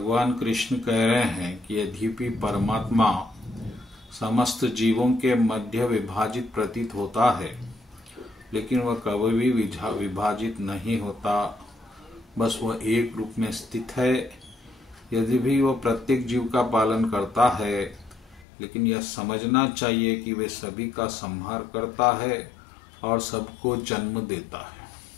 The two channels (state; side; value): drops out; right; at 18.4 s